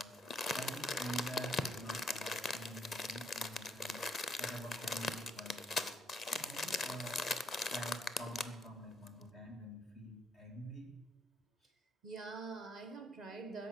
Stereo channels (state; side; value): normal; both; correlation 0.72